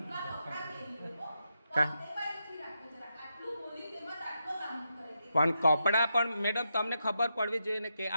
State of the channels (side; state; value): both; inverted; correlation -0.85